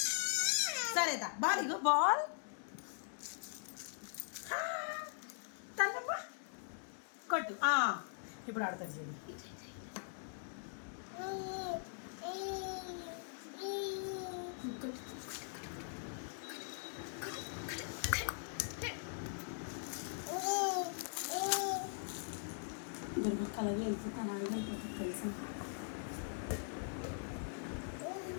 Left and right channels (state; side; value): silent; right; digital silence